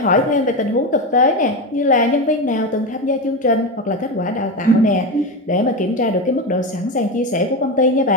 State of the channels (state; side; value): normal; both; correlation 0.17